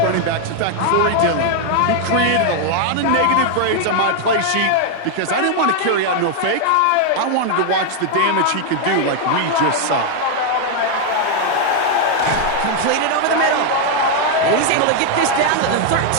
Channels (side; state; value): both; different; correlation 0.01